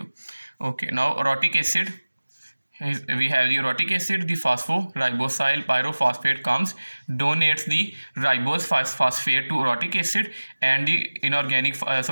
Okay, now orotic acid. We have the orotic acid, the phosphoribosyl pyrophosphate comes, donates the ribose phosphate to orotic acid, and the inorganic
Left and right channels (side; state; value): both; inverted; correlation -1.00